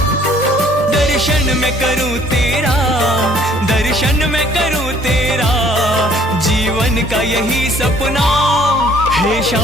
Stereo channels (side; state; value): both; normal; correlation 0.59